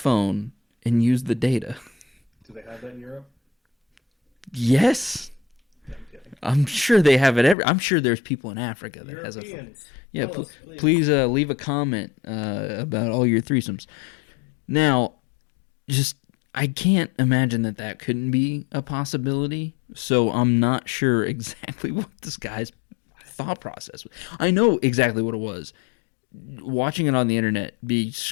and use the data. Do they have that in Europe? Yes. Yeah, I'm kidding. I'm sure they have it I'm sure there's people in Africa that has a phone. Europeans. Yeah, Tell us, please leave a comment about all your threesomes. Now, I can't imagine that couldn't be a possibility, so I'm not sure exactly what this guy's thought process was. I know exactly what it was. Watching it on the internet be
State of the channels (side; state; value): right; drops out; at 7.6 s